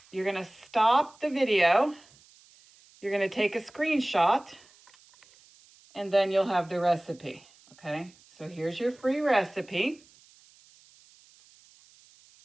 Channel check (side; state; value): right; noise; hiss, 28 dB below the sound